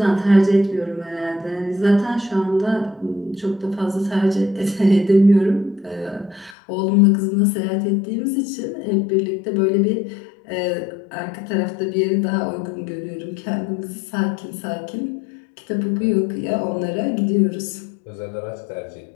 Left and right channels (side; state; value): right; drops out; at 6.6 s